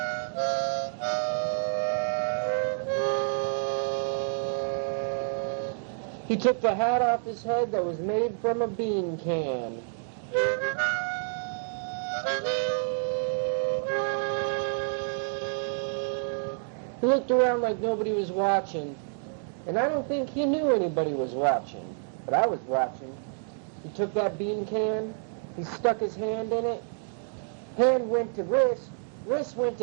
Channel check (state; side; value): silent; left; digital silence